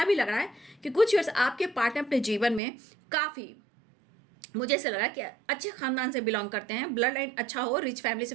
भी लग रहा है कि कुछ ईयर्स आपके पार्टनर अपने जीवन में काफ़ी, मुझे ऐसा लग रहा है कि अच्छे खानदान से बिलोंग करते हैं, ब्लड लाइन अच्छा हो, रिच फैमिली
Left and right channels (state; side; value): drops out; left; at 2.6 s